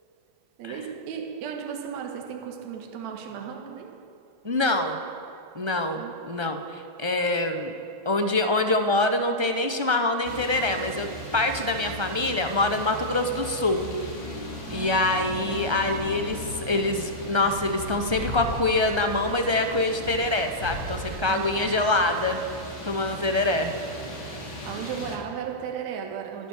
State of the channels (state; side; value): late; left; 1.3 ms